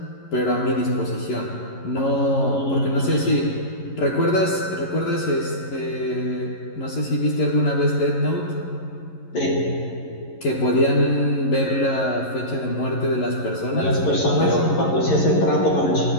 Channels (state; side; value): late; right; 11 ms